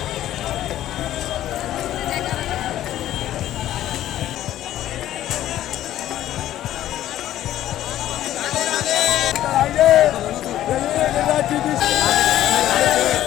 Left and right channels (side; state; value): right; quieter; 12.9 dB